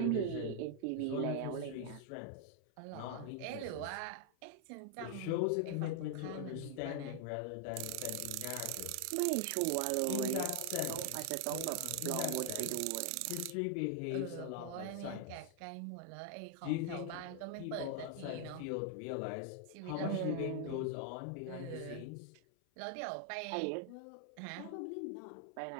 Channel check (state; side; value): different; both; correlation 0.00